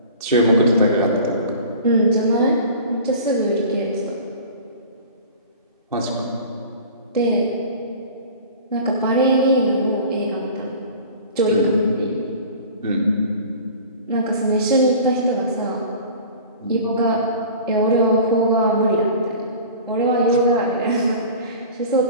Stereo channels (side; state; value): both; inverted; correlation -0.40